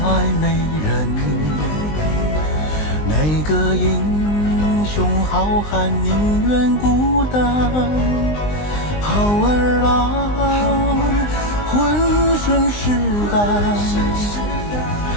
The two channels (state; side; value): late; right; 19 ms